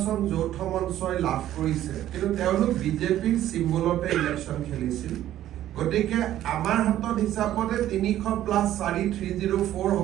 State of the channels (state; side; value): quieter; left; 12.7 dB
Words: যৌথ মঞ্চই লাভ কৰিছে, কিন্তু তেওঁলোক বিজেপিৰ চিম্বলতে ইলেকশ্যন খেলিছিল। গতিকে আমাৰ হাতত হিচাপতে ৩০০ + ৪ ৩০৪